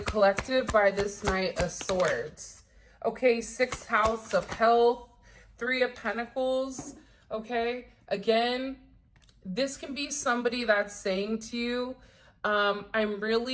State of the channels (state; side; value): identical; both; correlation 1.00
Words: by this Knight of Swords? Okay, 6th house of health, 3 of Pentacles. Okay, again, this can be somebody that's saying to you, I'm